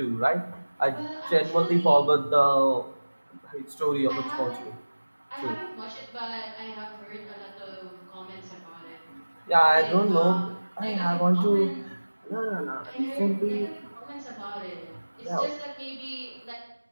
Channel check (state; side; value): inverted; both; correlation -1.00